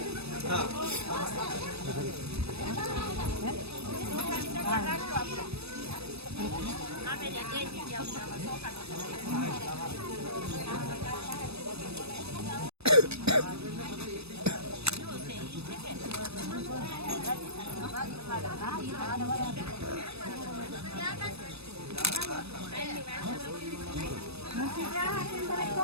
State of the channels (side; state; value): left; late; 0.78 ms